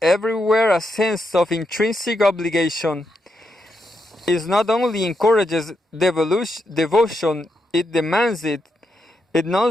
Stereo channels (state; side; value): normal; both; correlation 0.83